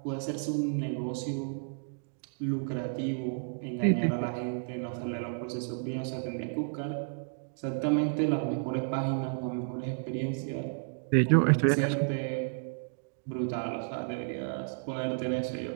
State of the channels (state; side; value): silent; left; digital silence